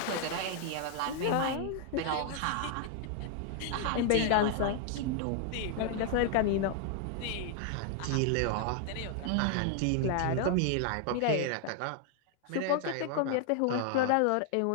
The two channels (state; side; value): different; both; correlation 0.00